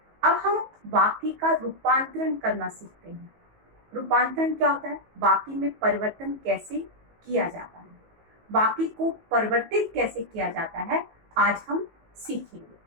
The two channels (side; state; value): left; late; 19 ms